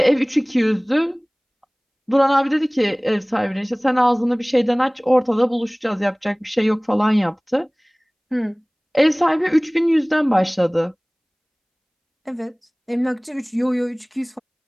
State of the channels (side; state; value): both; identical; correlation 1.00